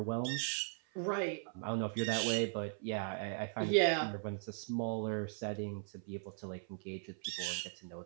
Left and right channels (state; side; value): silent; left; 52 dB below the other